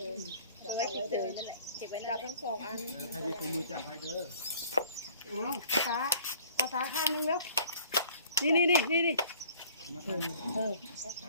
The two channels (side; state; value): both; inverted; correlation -0.53